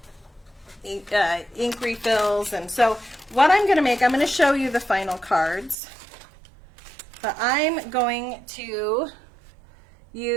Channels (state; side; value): drops out; left; at 5.8 s